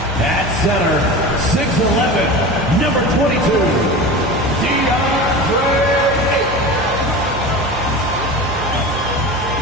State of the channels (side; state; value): both; normal; correlation 0.31